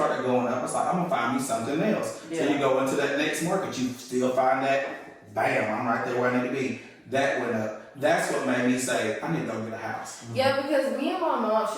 going up, I was like, I'm gonna find me something else. So you go into that next market, you still find that, bam, I'm right there where I need to be. That went up. That's what made me say, I need to go get a house. Yeah, because me and my mom,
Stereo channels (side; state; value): both; identical; correlation 1.00